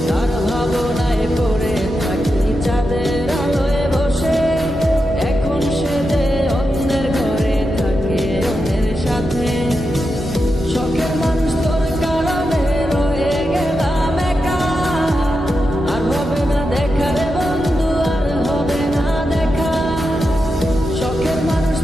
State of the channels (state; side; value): normal; both; correlation 0.88